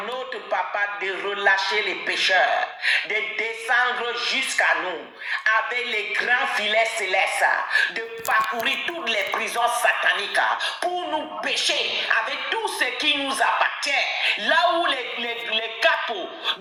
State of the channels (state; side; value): identical; both; correlation 1.00